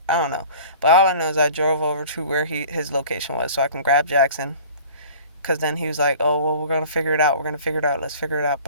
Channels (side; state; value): both; inverted; correlation -0.44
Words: don't know. But all I know is I drove over to where his location was, so I can grab Jackson. Cause then he was like, "Oh well, we're gonna figure it out. We're gonna figure it out. Let's figure it out."